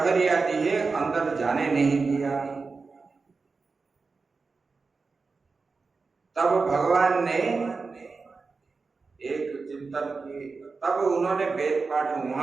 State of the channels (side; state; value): left; quieter; 4.4 dB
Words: आदि है अंदर जाने नहीं दिया। तब भगवान ने एक चिंतन की, तब उन्होंने वेद पाठ